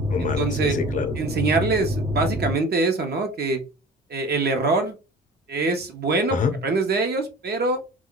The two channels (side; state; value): both; normal; correlation 0.40